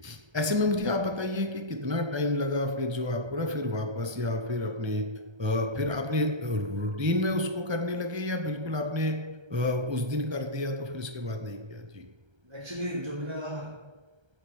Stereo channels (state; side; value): late; left; 1.3 ms